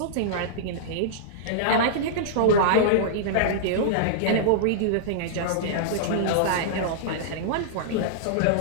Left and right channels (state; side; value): different; both; correlation -0.02